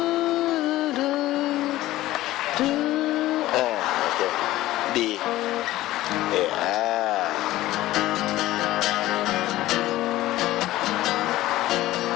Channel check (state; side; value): quieter; right; 16.0 dB